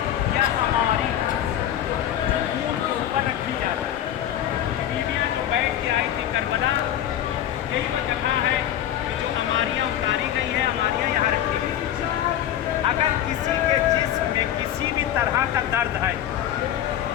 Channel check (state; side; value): quieter; right; 11.3 dB